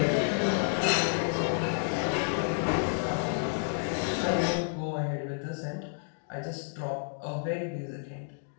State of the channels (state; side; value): silent; right; digital silence